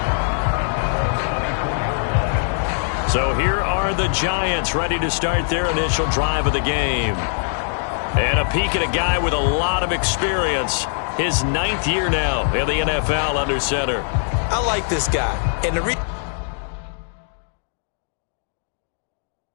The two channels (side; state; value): right; silent; digital silence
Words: So here are the Giants ready to start their initial drive of the game. And a peek at a guy with a lot of experience. His 9th year now in the NFL under center. I like this guy. And the reason